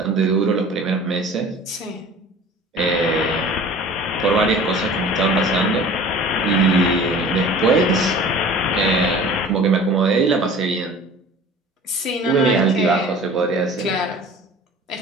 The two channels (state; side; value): normal; both; correlation 0.44